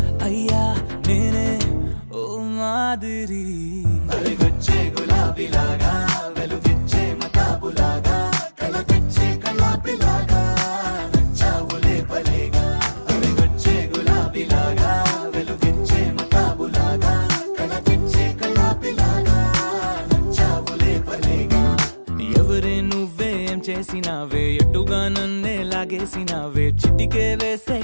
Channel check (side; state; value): both; inverted; correlation -1.00